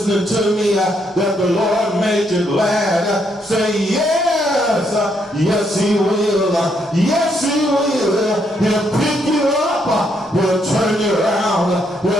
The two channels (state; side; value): normal; both; correlation 0.74